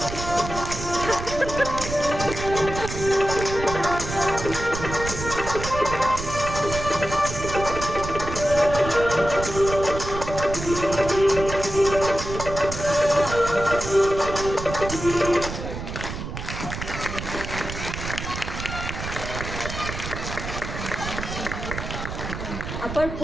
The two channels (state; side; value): noise; right; rumble, 7 dB below the sound